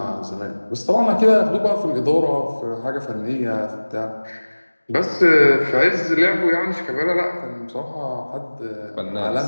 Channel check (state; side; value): inverted; both; correlation -1.00